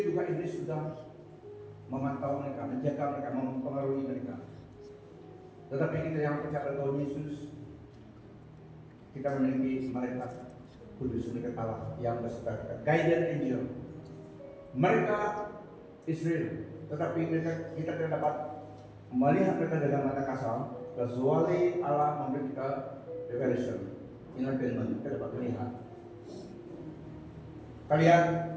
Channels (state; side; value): identical; both; correlation 1.00